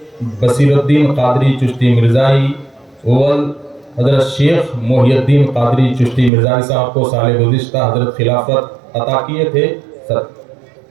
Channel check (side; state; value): left; drops out; at 6.3 s